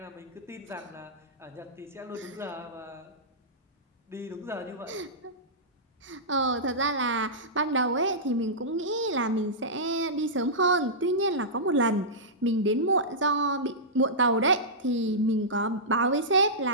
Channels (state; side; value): normal; both; correlation -0.15